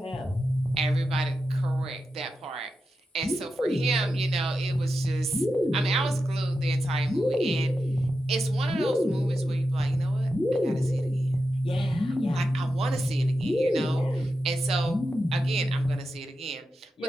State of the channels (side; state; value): both; normal; correlation 0.89